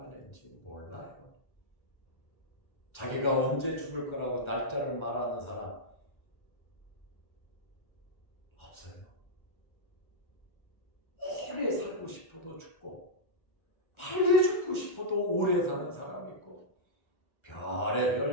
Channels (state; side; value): late; right; 1.4 ms